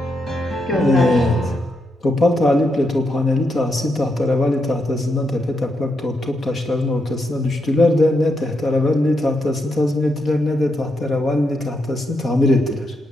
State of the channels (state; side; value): normal; both; correlation 0.81